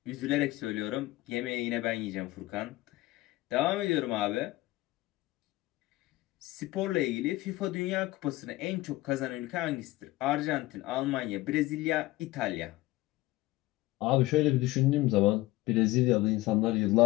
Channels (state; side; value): quieter; right; 18.5 dB